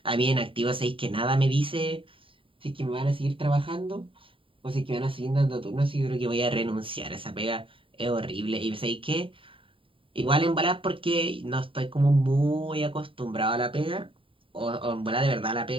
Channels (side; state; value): left; late; 0.25 ms